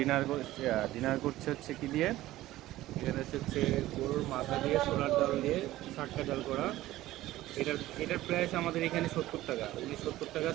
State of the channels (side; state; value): left; quieter; 15.8 dB